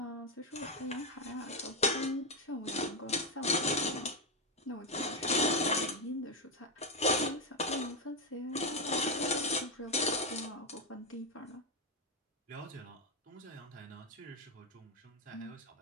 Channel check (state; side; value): normal; both; correlation 0.06